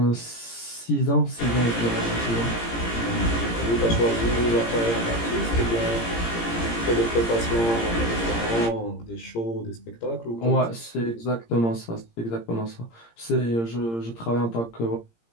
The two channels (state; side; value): late; right; 17 ms